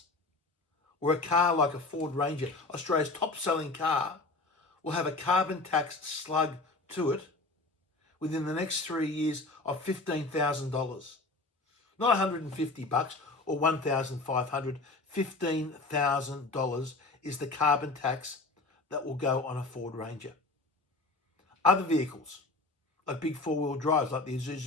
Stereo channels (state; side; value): quieter; right; 3.3 dB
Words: Where a car like a Ford Ranger, Australia's top-selling car, will have a carbon tax slug to it within the next 3 years of $15,000. Not $150 or $1,500. $15,000 is the carbon tax that will go on a Ford Ranger. Other vehicles, like big four-wheel drives, like the